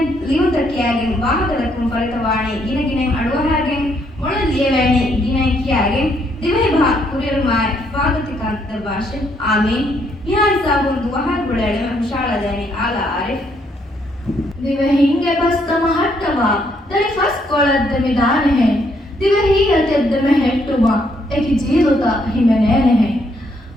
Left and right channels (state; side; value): normal; both; correlation 0.72